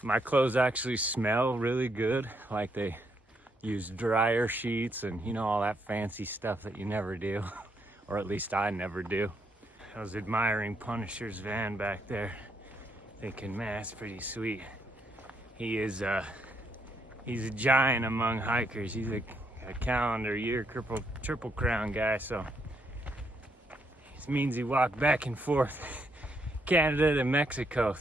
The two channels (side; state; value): both; normal; correlation 0.76